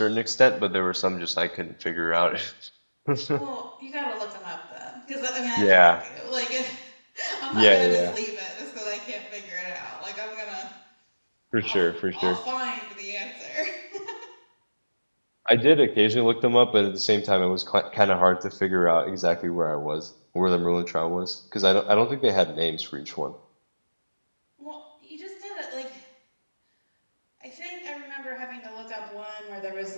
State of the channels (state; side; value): inverted; both; correlation -1.00